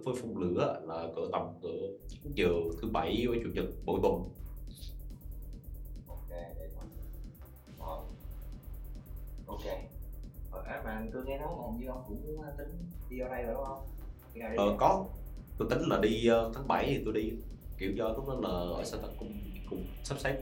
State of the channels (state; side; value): identical; both; correlation 1.00